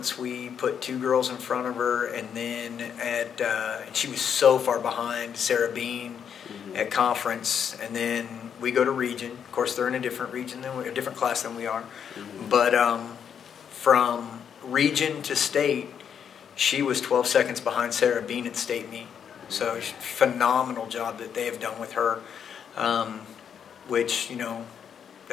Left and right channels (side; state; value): right; quieter; 7.9 dB